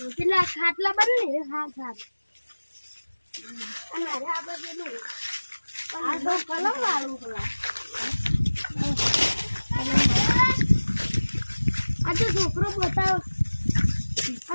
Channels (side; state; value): both; inverted; correlation -1.00